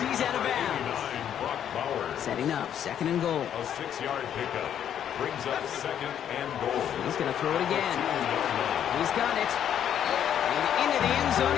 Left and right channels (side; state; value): right; quieter; 9.6 dB